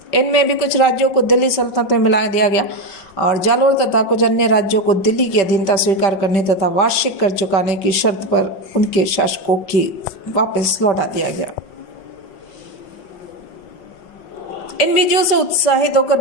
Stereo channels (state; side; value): late; right; 5.1 ms